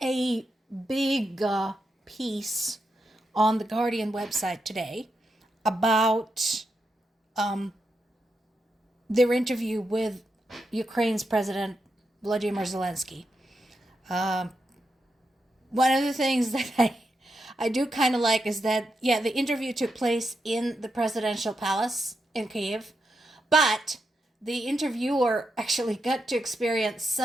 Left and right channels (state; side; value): normal; both; correlation 0.85